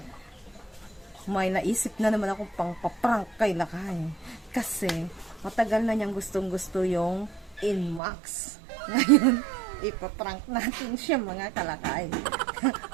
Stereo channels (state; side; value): drops out; left; at 8.0 s